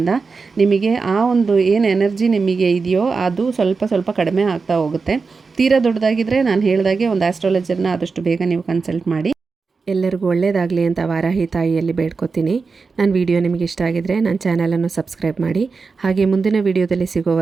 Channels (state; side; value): quieter; left; 4.6 dB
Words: ನಿಮಗೆ ಆ ಒಂದು ಏನು ಎನರ್ಜಿ ನಿಮಗೆ ಇದೆಯೋ ಅದು ಸ್ವಲ್ಪ ಸ್ವಲ್ಪ ಕಡಿಮೆ ಆಗ್ತಾ ಹೋಗುತ್ತೆ. ತೀರಾ ದೊಡ್ಡದಾಗಿದ್ದರೆ ನಾನು ಹೇಳಿದಾಗೆ ಒಂದು ಆಸ್ಟ್ರಾಲಜರ್ನ ಆದಷ್ಟು ಬೇಗ ನೀವು ಕನ್ಸಲ್ಟ್ ಮಾಡಿ. ಎಲ್ಲರಿಗೂ ಒಳ್ಳೆಯದಾಗಲಿ ಅಂತ ವಾರಾಹಿ ತಾಯಿಯಲ್ಲಿ ಬೇಡ್ಕೊತೀನಿ. ನನ್ನ ವಿಡಿಯೋ ನಿಮಗೆ ಇಷ್ಟ ಆಗಿದರೆ ನನ್ನ ಚಾನಲನ್ನು ಸಬ್ಸ್ಕ್ರೈಬ್ ಮಾಡಿ. ಹಾಗೆ ಮುಂದಿನ ವಿಡಿಯೋದಲ್ಲಿ